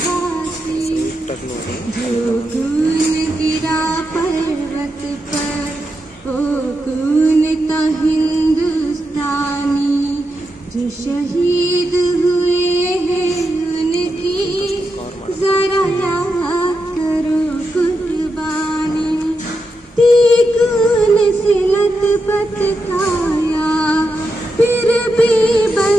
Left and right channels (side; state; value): both; normal; correlation 0.86